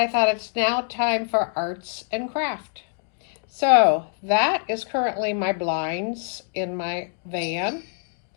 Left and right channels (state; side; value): silent; right; digital silence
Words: thought it's now time for arts and craft. So that is currently my blinds in my van.